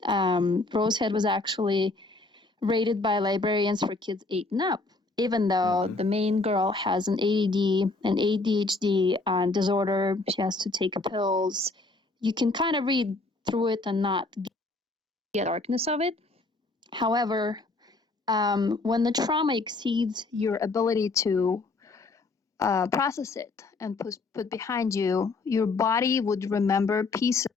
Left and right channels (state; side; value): quieter; right; 3.4 dB